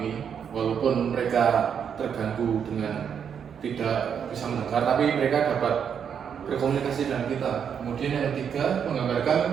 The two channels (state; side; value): quieter; left; 7.6 dB